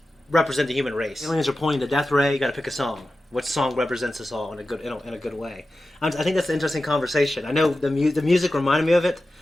represent the human race, aliens are pointing the death ray. You got to pick a song. What song represents us all in a good way? I think that's an interesting conversation. I know the music reminded me of it,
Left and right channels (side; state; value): both; normal; correlation 0.93